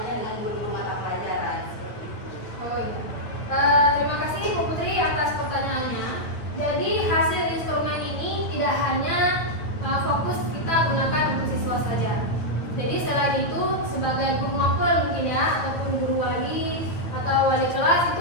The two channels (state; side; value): late; right; 9.0 ms